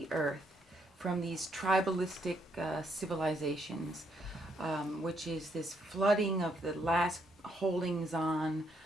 earth from these tribalistic civilizations, which is this flooding of the last holdings on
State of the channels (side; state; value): both; normal; correlation 0.74